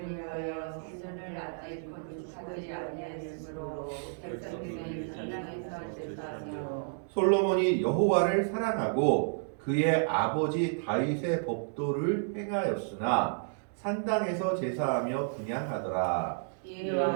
위하여 성전을 아직 건축하지 아니하였으므로 백성들이 산당에서 제사하며 솔로몬이 여호와를 사랑하고 그의 아버지 다윗의 법도를 행하였으나 산당에서 제사하며 분향하더라. 이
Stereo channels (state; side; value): silent; left; digital silence